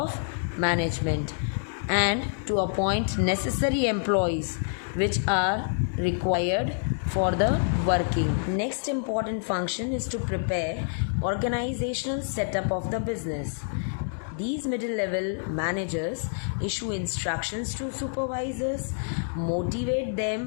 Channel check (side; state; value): right; silent; digital silence